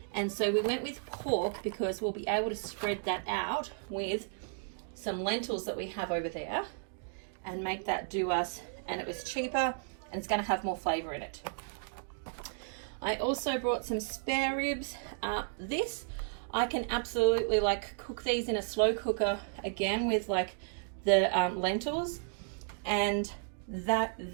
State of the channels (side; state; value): left; silent; digital silence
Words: And so we went with pork because we'll be able to spread that out with some lentils that we have over there and make that do us, and it was cheaper and it's going to have more flavor in it. I also brought some spare ribs. This I can absolutely like cook these in a slow cooker again with like the lentils, and